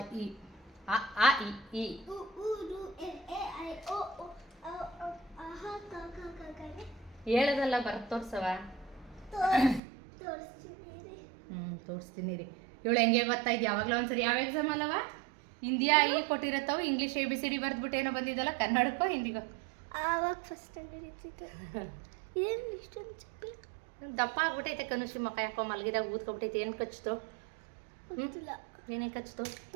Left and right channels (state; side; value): drops out; left; at 9.8 s